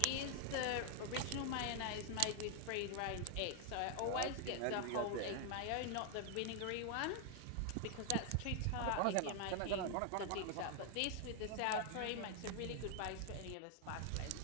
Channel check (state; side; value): different; both; correlation 0.00